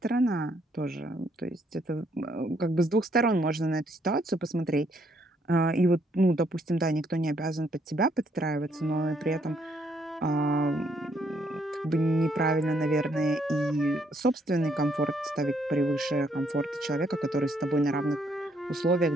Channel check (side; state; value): both; normal; correlation 0.71